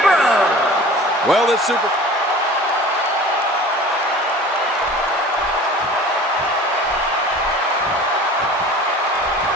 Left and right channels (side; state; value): both; normal; correlation 0.42